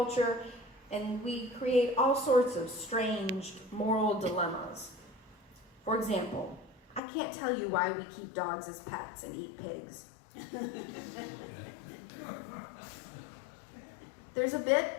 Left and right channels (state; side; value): drops out; right; at 7.0 s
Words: and we create all sorts of strange moral dilemmas. For example, I can't tell you why we keep dogs as pets and eat pigs. There's a